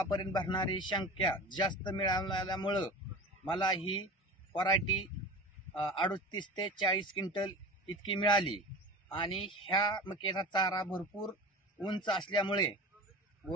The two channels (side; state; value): both; normal; correlation 0.33